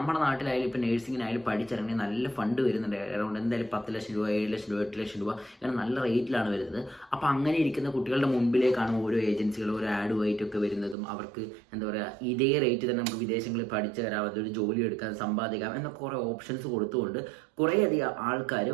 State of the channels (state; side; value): drops out; left; at 11.0 s